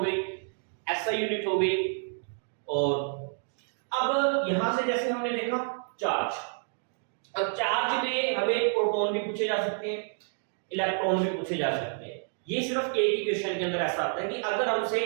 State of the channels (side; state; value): left; silent; 58 dB below the other